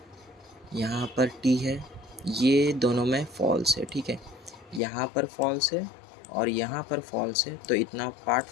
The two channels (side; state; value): right; drops out; at 4.8 s